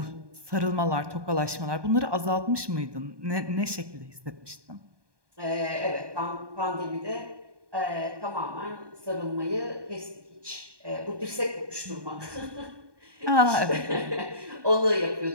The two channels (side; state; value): left; late; 1.2 ms